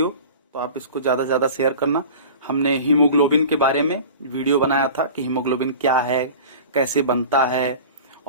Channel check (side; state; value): both; inverted; correlation -0.38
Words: तो आप इसको ज्यादा से ज्यादा शेयर करना। हमने हीमोग्लोबिन के बारे में वीडियो बनाया था कि हीमोग्लोबिन क्या है, कैसे बनता है,